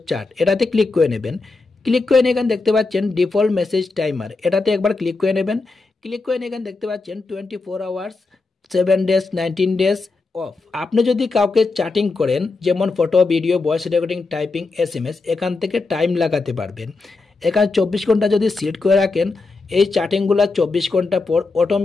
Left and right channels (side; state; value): right; quieter; 3.7 dB